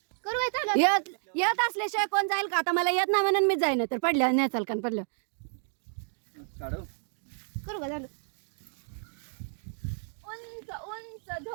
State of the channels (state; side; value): silent; left; digital silence